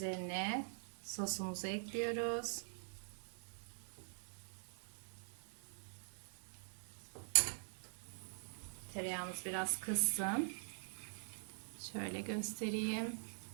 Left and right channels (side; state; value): left; silent; digital silence